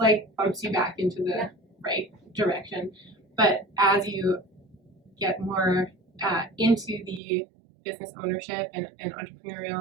like bumps you back into the right direction. But as you get more into the business ownership and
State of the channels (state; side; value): drops out; left; at 7.2 s